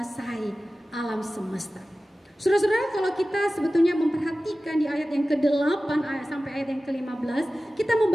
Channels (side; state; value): both; normal; correlation 0.96